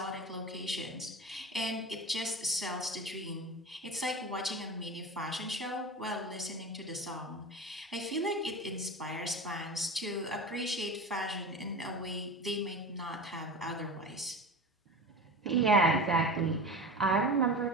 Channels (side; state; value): both; normal; correlation 0.31